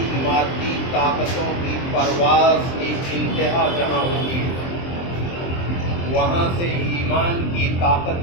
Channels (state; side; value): late; right; 23 ms